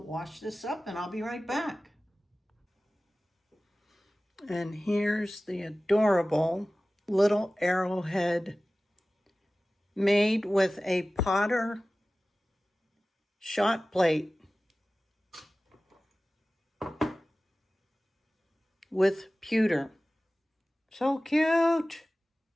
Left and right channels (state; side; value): normal; both; correlation 0.97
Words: wash this up and I'll be right back. And here's the adorable little arrowhead made with a Potter shot plate with pewter. So cute.